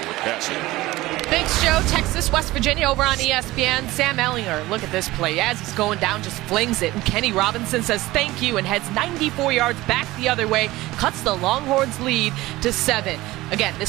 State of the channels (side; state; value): left; quieter; 18.4 dB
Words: Cassidy. Thanks, Joe. Texas, West Virginia over on ESPN. Sam Ehlinger, look at this play. As he's going down, just flings it. And Kenny Robinson says thank you and heads 94 yards back the other way. Cuts the Longhorns lead to 7. Again,